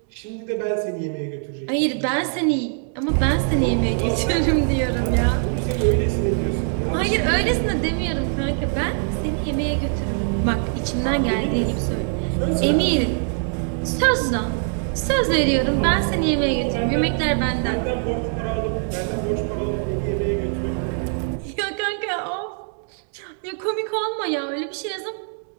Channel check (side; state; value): left; silent; 56 dB below the other